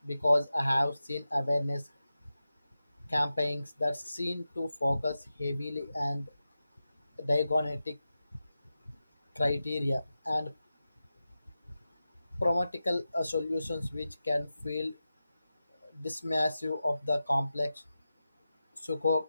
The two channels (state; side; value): inverted; both; correlation -0.93